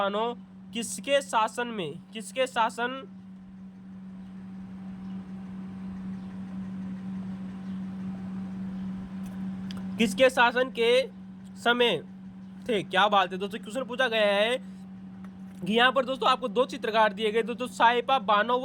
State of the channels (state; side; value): identical; both; correlation 1.00